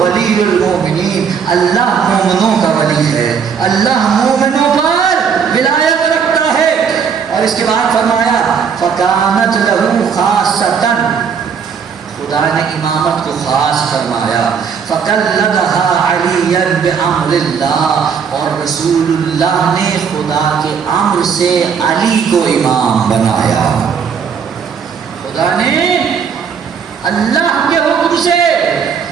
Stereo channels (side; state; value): left; quieter; 6.7 dB